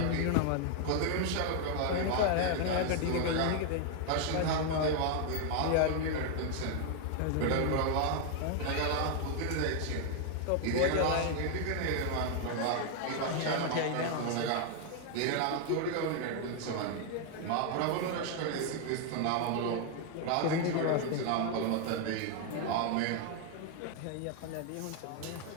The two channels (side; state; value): both; different; correlation 0.00